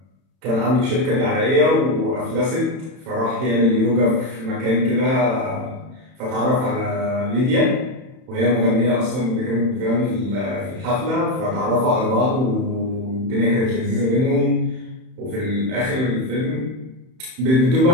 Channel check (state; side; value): late; left; 31 ms